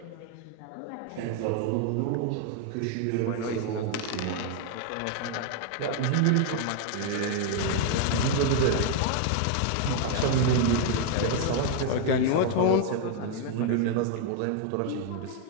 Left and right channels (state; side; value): different; both; correlation 0.00